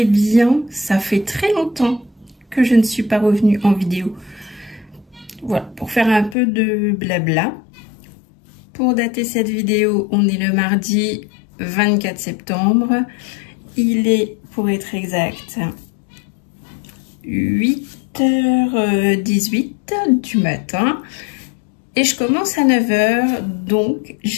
bien. Ça fait très longtemps que je ne suis pas revenue en vidéo. Voilà, pour faire un peu de blabla. Pour dater cette vidéo, on est le mardi 24 septembre. Il est, pour être exact, 8h18 du matin. Et je commence à 9h, donc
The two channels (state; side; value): drops out; right; at 6.4 s